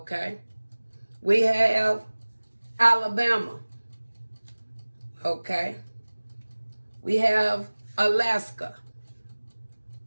We have Alabama, okay. We have Alaska.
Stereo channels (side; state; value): both; inverted; correlation -1.00